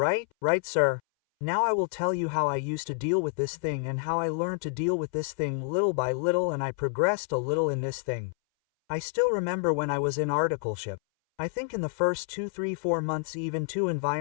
Right, sir. Now I will tell you how I used to deal with this thing and how I learned to deal with this thing little by little, and I progressed a little in this thing. I still remember when I was in articleship. I think in the first 2, 3, 4 months even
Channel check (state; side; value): silent; right; 59 dB below the other